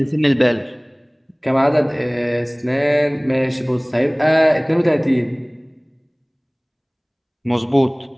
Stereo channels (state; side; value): identical; both; correlation 1.00